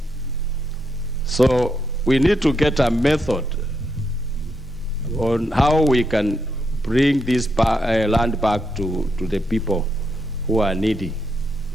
So we need to get a method on how we can bring this land back to the people who are needy.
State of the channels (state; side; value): normal; both; correlation 0.80